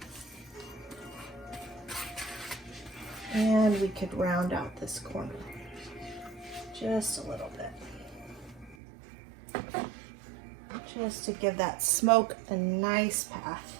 And we could round out this corner just a little bit, just to give that smoke a nice path.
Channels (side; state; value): left; drops out; at 8.8 s